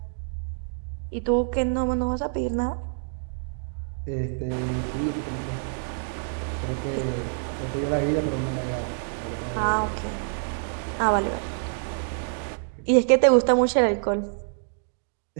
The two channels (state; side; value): silent; left; digital silence